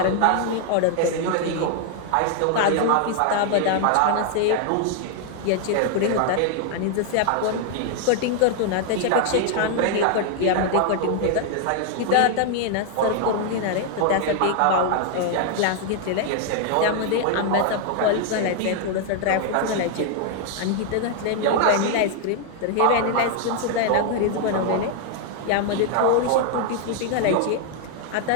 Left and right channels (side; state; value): both; different; correlation 0.00